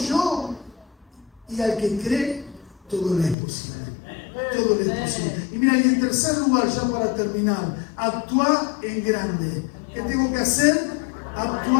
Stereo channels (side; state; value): right; drops out; at 3.4 s